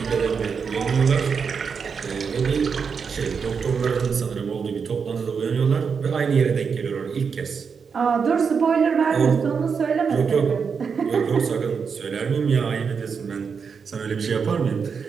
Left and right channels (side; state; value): left; quieter; 6.0 dB